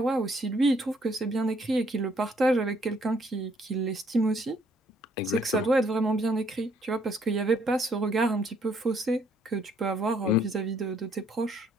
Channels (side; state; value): both; normal; correlation 0.66